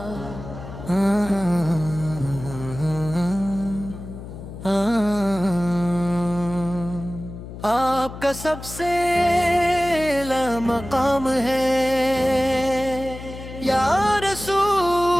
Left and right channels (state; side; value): noise; left; hum, 12 dB below the sound